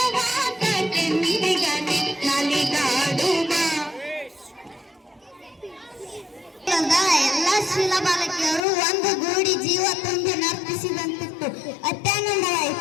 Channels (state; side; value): drops out; right; at 8.7 s